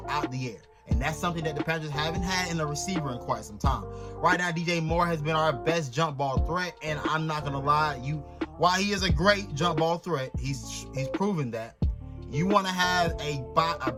out the air. And that's something that the Panthers haven't had in a receiver in quite some time. Right now, DJ Moore has been our best jump ball threat, and I'm not gonna lie, while he is a great jump ball threat, he's proven that. You want to have a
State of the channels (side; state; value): both; identical; correlation 1.00